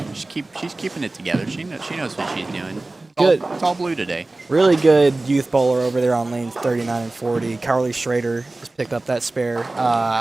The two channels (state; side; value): quieter; left; 3.0 dB